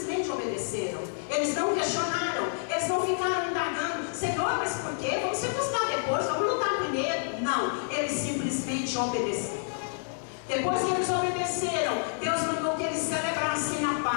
obedeceram. Eles não questionaram, eles não ficaram indagando: Senhor, mas por quê? Vamos circuncidar depois, vamos lutar primeiro. Não, eles simplesmente obedeceram. Depois que eles obedeceram, Deus mandou que eles celebrassem a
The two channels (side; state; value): right; silent; digital silence